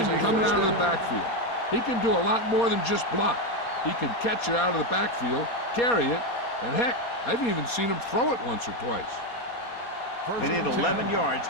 coming out of the backfield. He can do a lot more than just block. He can catch it out of the backfield, carry it, and heck, I've even seen him throw it once or twice. They need 11 yards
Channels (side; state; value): right; late; 4.2 ms